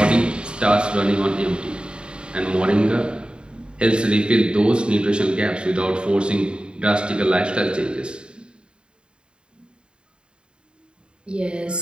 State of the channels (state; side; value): late; left; 0.051 ms